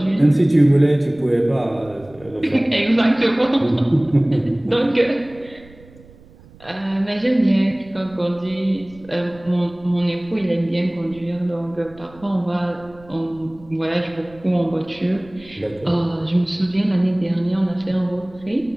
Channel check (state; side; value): noise; right; rumble, 24 dB below the sound